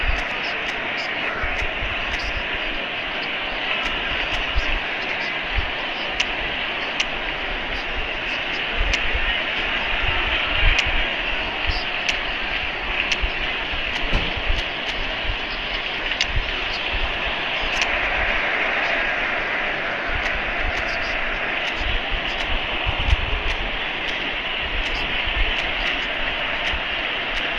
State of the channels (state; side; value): identical; both; correlation 1.00